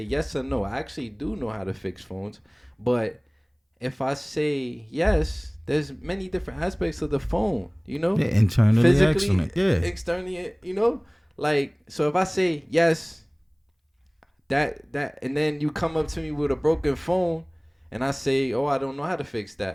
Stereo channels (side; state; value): both; identical; correlation 1.00